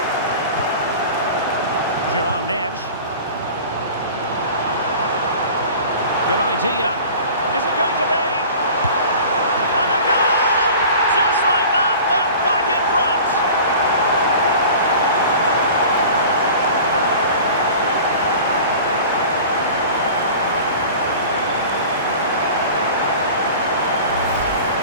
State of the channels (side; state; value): both; inverted; correlation -0.40